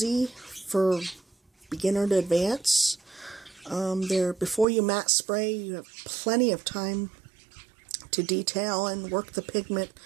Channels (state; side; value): drops out; left; at 4.7 s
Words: for beginner to advance. Before you matte spray, you have plenty of time to detail and work the pigment